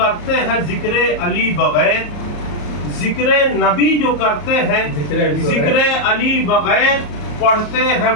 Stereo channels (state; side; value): late; right; 34 ms